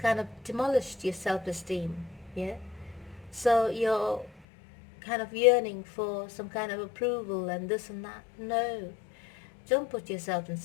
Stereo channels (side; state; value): right; drops out; at 4.4 s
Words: of demolished your self-esteem. Yeah? So you're kind of yearning for some kind of approval and this and that. No. Don't put yourself in